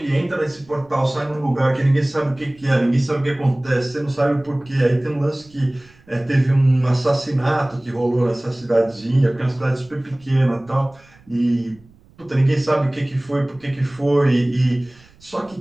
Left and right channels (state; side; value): noise; right; rumble, 28 dB below the sound